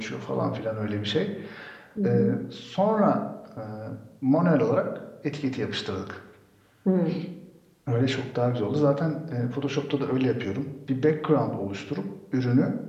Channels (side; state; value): both; identical; correlation 1.00